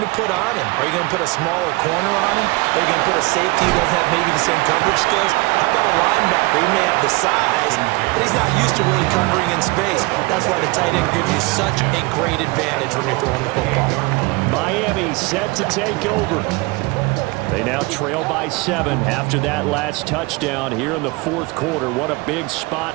put on him. Are you going to put a smaller corner on him? Are you going to put a safety who doesn't have maybe the same coverage skills? How about a linebacker? He may have the size, but he's not used to really covering in space. That's why the tight end gives you such a great advantage when you're throwing the football. Miami set to take over. They now trail by 7 after that last touchdown here in the 4th quarter. What a big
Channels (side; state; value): left; quieter; 24.1 dB